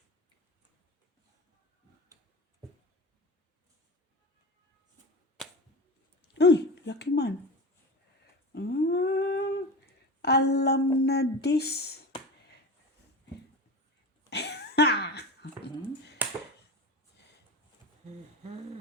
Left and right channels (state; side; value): normal; both; correlation 0.28